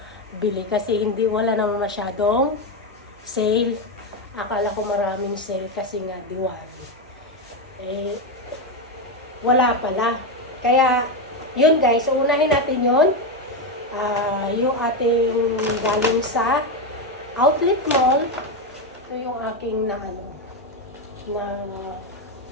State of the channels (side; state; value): both; normal; correlation 0.10